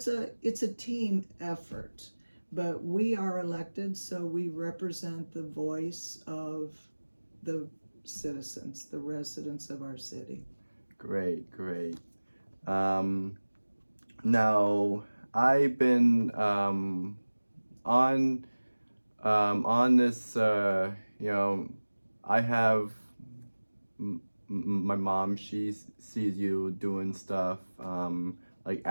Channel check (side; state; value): both; inverted; correlation -1.00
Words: a team effort, but we are elected, so we represent the voice of the citizens, the residents of our city. Great, great. Now I've been on this. I have my mom. She sees you doing stuff. Like